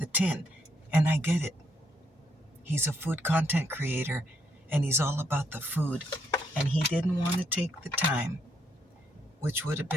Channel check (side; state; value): both; normal; correlation 0.75